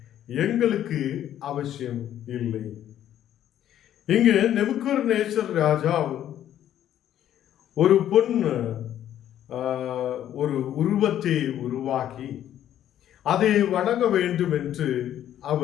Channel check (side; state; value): right; quieter; 11.3 dB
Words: எங்களுக்கு அவசியம் இல்லை. இங்கு நேபுகத்நேச்சர் ராஜா ஒரு ஒரு உருவத்தை உருவாக்கி அதை வணங்க வேண்டும் என்று